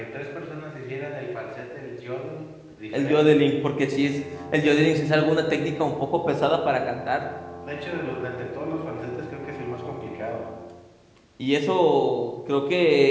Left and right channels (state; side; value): identical; both; correlation 1.00